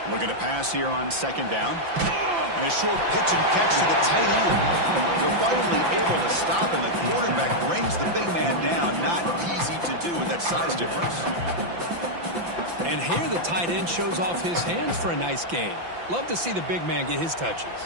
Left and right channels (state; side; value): late; left; 5.8 ms